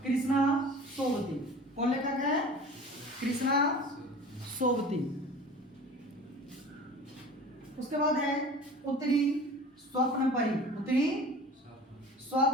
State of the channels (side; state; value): both; normal; correlation 0.40